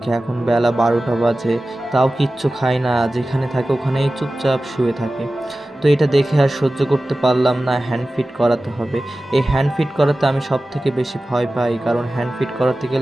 এখন বেলা 12টা বাজে, তাও কিচ্ছু খায় না, যেখানে থাকে ওখানেই চুপচাপ শুয়ে থাকে। তো এটা দেখে আর সহ্য করতে পারলাম না, হ্যান্ড ফিড করাতে হবে। এই হ্যান্ড ফিড করাতে আমি সব থেকে বেশি ভয় পাই, কারণ হ্যান্ড ফিড করাতে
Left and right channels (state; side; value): normal; both; correlation 0.96